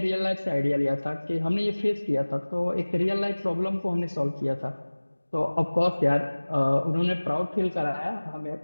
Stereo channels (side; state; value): both; inverted; correlation -1.00